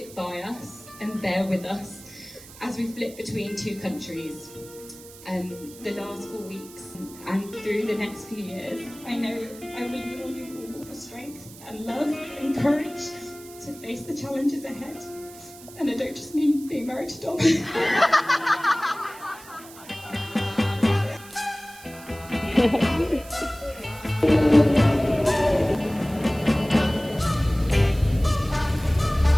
by us and bear with us as we flip between two countries the last 4 weeks and through the next few years. I know I lean on you all for strength and love and courage to face the challenges ahead. And I don't just mean being married to Dom.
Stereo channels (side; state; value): right; noise; hiss, 19 dB below the sound